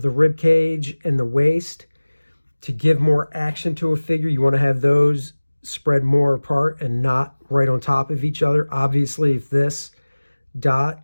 the rib cage and the waist, to give more action to a figure, you want to have those spread more apart and not right on top of each other. Obviously, if this dot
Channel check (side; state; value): both; inverted; correlation -1.00